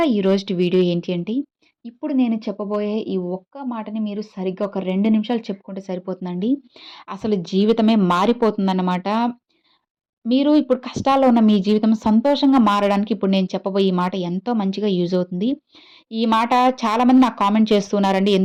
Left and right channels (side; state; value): both; identical; correlation 1.00